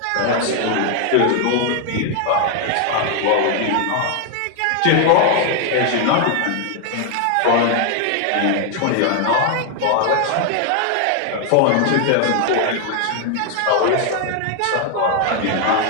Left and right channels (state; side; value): different; both; correlation 0.00